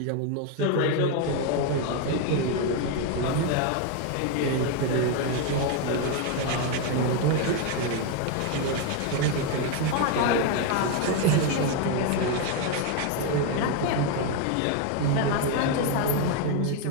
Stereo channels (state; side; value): different; both; correlation 0.01